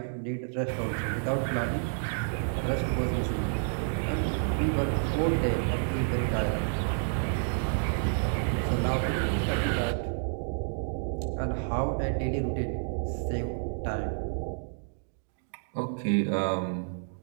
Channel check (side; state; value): left; silent; 58 dB below the other